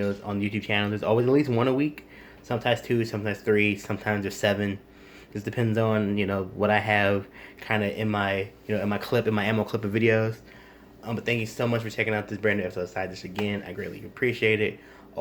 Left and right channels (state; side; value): identical; both; correlation 1.00